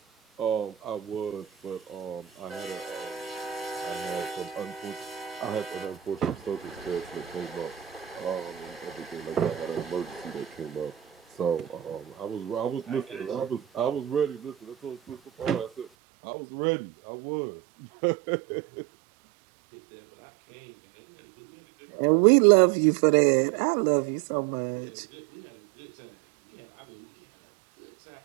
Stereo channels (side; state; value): left; drops out; at 15.9 s